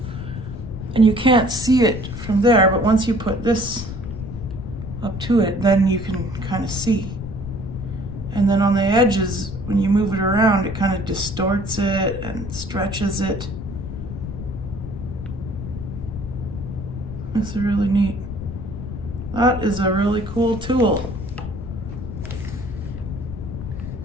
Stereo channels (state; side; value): noise; left; rumble, 8 dB below the sound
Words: And you can't see it from there, but once you put this up to it, then you can kind of see. And then on the edges, when you move it around, it kind of distorts it and stretches it. That's really neat. That is a really cool tool.